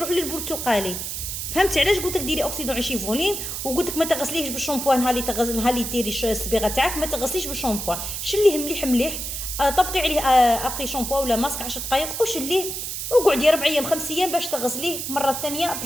للبرتقالي. فهمتي علاش قلت لك ديري اوكسيدون 20 فوليم؟ وقلت لك ما تغسليهش بالشامبو نهار اللي ديري الصبيغه تاعك، ما تغسليش بالشامبو، شليه مليح مليح، طبقي عليه ابقي شامبو ولا ماسك 10 دقائق وشليه، وقعدي 4 ايام 5 ايام باش تغسليه مره ثانيه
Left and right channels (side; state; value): right; noise; hiss, 5 dB below the sound